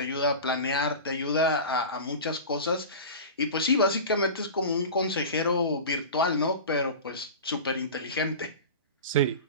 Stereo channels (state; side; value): inverted; both; correlation -0.30